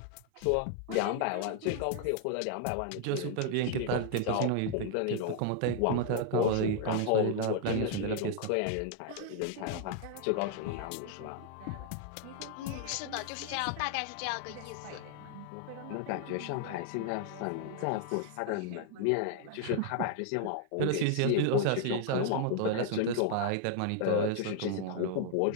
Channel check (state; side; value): different; both; correlation 0.00